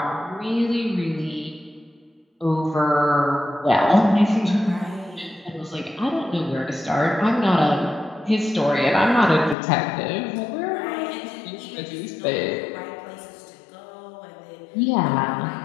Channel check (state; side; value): drops out; right; at 9.6 s